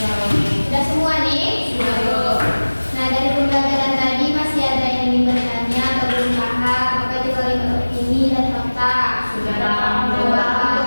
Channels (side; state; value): both; inverted; correlation -1.00